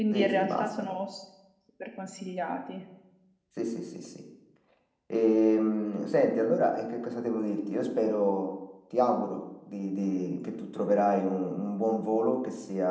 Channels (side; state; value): both; identical; correlation 1.00